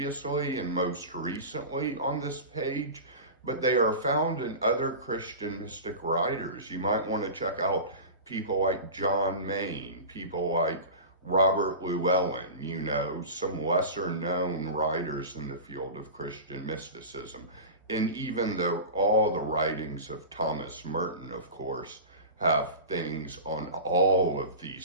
and most recently on this page, but they are found in other Christian mystic writers. You might want to check out people like John Maine, people like Robert Llewellyn, some lesser known writers in the field of Christian mysticism. And even all the writings of Thomas Merton, of course, have things on all of these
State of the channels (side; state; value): both; inverted; correlation -0.30